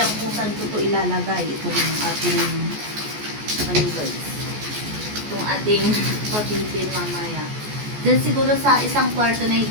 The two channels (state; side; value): late; left; 14 ms